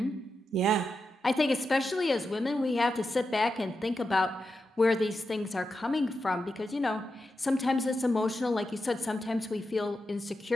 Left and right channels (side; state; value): both; normal; correlation 0.88